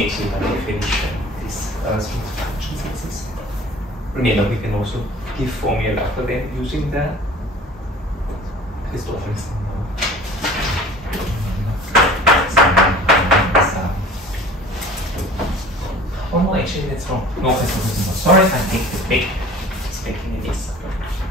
by definition these smooth functions exist. Remember, we can also give formula for them using the Christoffels. Oh no, actually that's wrong. No, that's not. Sorry, I take this back. It's making a mess.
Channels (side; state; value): both; normal; correlation 0.45